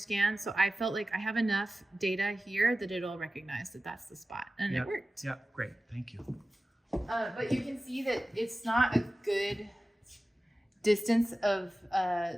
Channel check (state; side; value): normal; both; correlation 0.96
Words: So I felt like I have enough data here that it'll recognize that that's the spot, and it worked. Yeah, great. Thank you. But you can see that it's not a good distance of